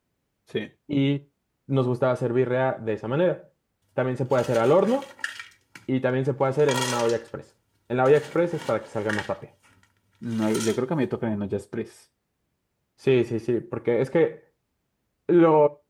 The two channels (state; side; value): identical; both; correlation 1.00